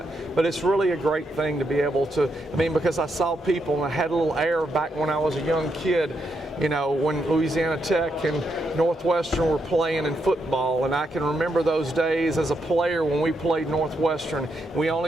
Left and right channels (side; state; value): both; normal; correlation 0.81